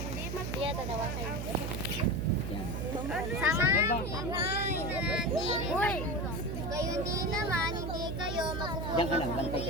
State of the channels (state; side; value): noise; right; hum, 4 dB below the sound